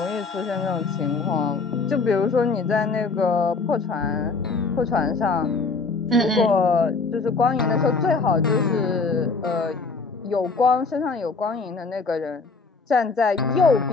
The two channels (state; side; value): quieter; right; 4.2 dB